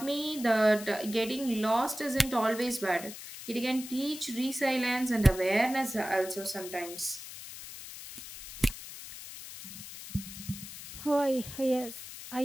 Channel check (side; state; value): left; noise; hiss, 12 dB below the sound